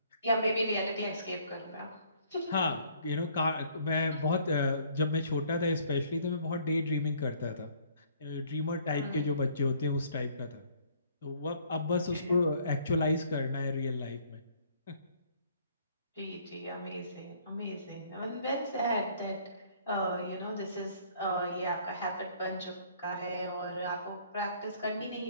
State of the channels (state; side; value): inverted; both; correlation -0.60